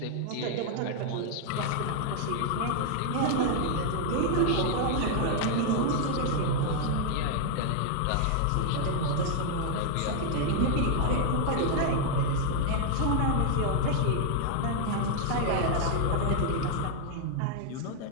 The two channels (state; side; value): different; both; correlation -0.01